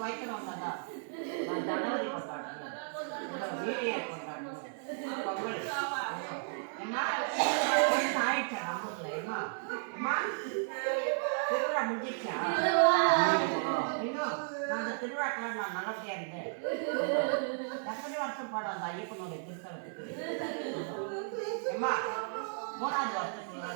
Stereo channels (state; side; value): silent; left; digital silence